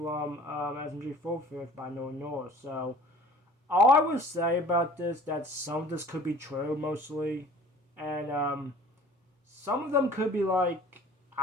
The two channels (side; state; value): both; normal; correlation 0.47